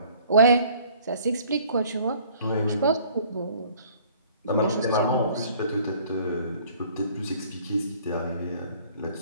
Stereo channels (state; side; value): inverted; both; correlation -0.55